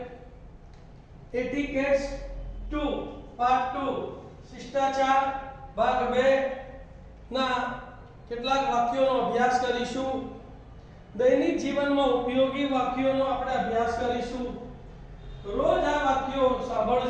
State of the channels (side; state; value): both; identical; correlation 1.00